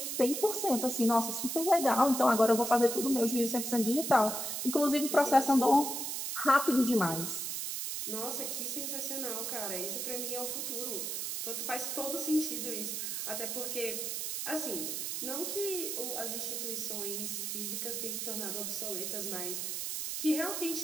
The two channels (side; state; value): right; noise; hiss, 3 dB below the sound